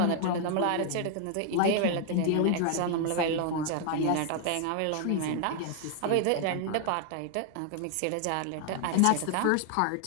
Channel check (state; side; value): different; both; correlation 0.00